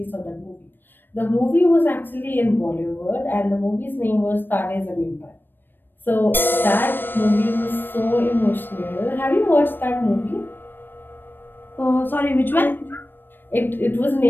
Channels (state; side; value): late; right; 0.095 ms